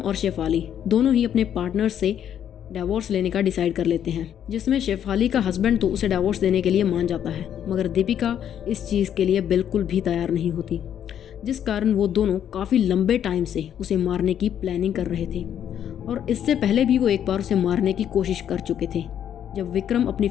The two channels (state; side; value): quieter; right; 9.6 dB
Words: शेफाली दोनों ही अपने पार्टनर से डाइवोर्स लेने का डिसाइड कर लेते हैं, जिसमें शेफाली का हस्बैंड तो उसे डाइवोर्स देने के लिए मान जाता है, मगर दीपिका इस चीज़ के लिए बिल्कुल भी तैयार नहीं होती, जिस कारण वो दोनों काफ़ी लंबे टाइम से उसे मारने की प्लानिंग कर रहे थे। और इससे पहले भी वो एक बार उसे मारने की कोशिश कर चुके थे, जब विक्रम अपनी